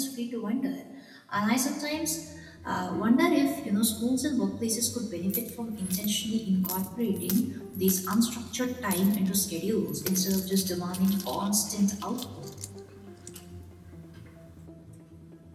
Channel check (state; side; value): identical; both; correlation 1.00